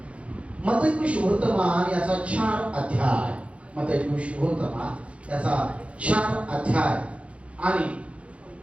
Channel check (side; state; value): left; late; 0.062 ms